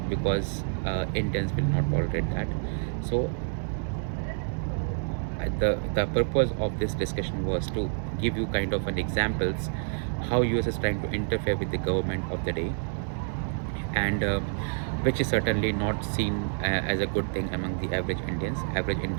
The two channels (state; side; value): silent; left; 59 dB below the other